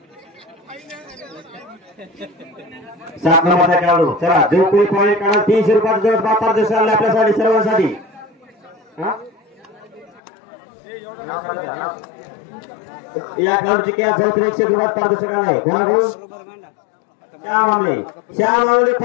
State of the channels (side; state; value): right; drops out; at 10.2 s